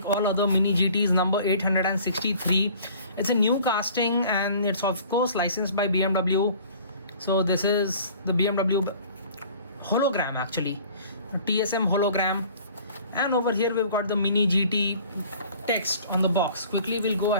all other Mini GTs. Number 863. It's a new casting and it's of course licensed by BMW. So this is the BMW hologram actually. TSM hologram, and over here we've got the Mini GT text on the box. Quickly we'll go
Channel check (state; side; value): inverted; both; correlation -0.50